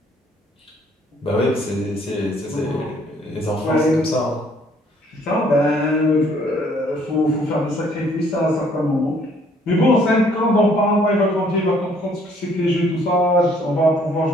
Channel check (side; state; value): both; normal; correlation 0.63